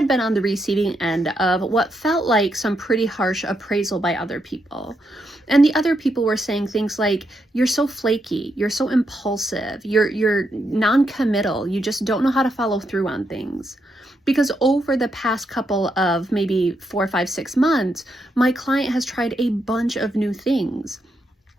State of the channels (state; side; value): normal; both; correlation 0.81